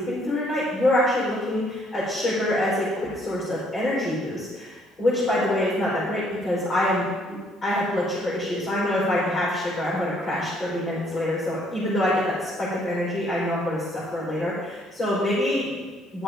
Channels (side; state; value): both; normal; correlation 0.66